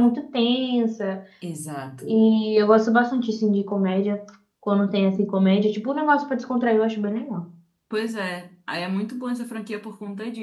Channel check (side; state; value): both; identical; correlation 1.00